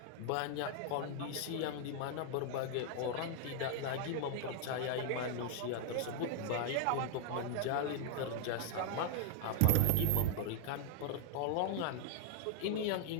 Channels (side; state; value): both; different; correlation 0.00